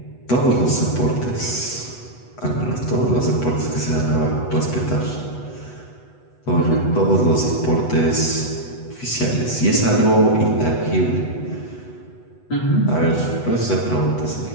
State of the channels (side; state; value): right; late; 8.1 ms